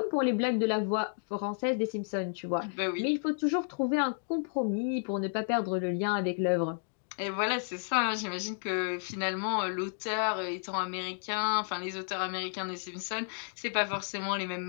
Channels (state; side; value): silent; right; digital silence